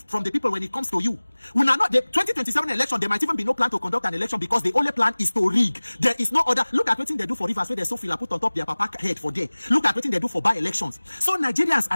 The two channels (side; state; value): both; inverted; correlation -1.00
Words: the people when it comes to you. When are not the 2027 election, there might even be no plan to conduct an election because the only plan is to rig. There is no other. Look at what they do for rivers where they so feel put on top their papa head for there. Look at what they do for by-elections. So Nigerians,